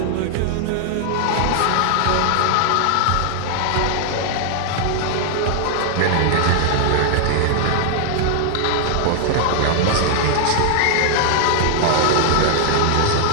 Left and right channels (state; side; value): different; both; correlation 0.00